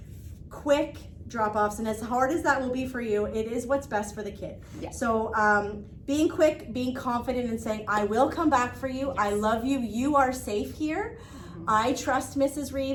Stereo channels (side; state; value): both; identical; correlation 1.00